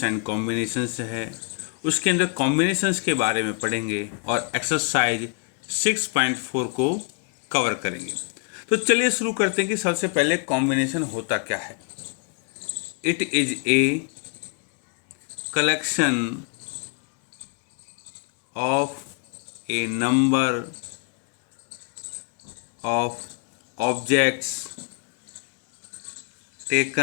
एंड कॉम्बिनेशंस है, उसके अंदर कॉम्बिनेशंस के बारे में पढ़ेंगे और एक्सरसाइज 6.4 को कवर करेंगे। तो चलिए शुरू करते हैं कि सबसे पहले कॉम्बिनेशन होता क्या है। It is a collection of A number of objects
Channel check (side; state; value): right; quieter; 38.3 dB